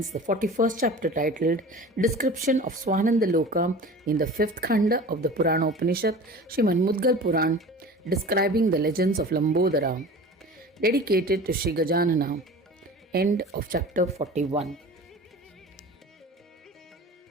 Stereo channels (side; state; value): both; normal; correlation 0.38